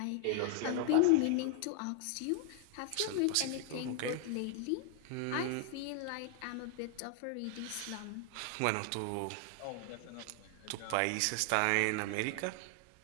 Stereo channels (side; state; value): both; different; correlation 0.00